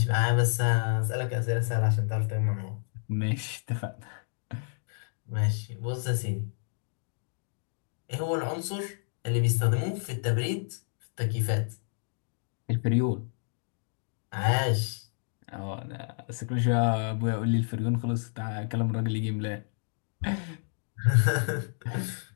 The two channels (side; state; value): right; silent; digital silence